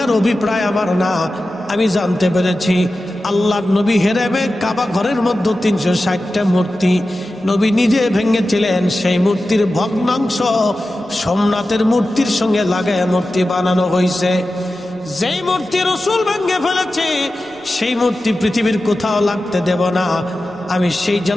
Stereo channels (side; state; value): right; noise; rumble, 30 dB below the sound